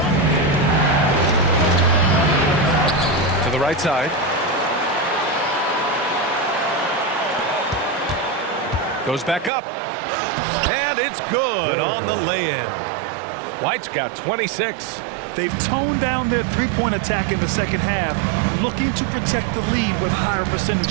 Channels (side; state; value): left; drops out; at 9.5 s